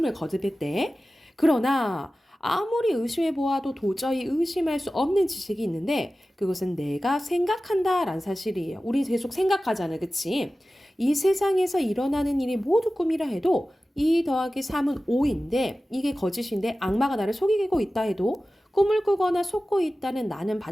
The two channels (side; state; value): both; normal; correlation 0.95